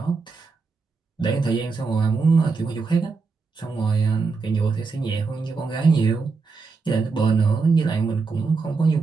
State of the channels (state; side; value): quieter; left; 4.4 dB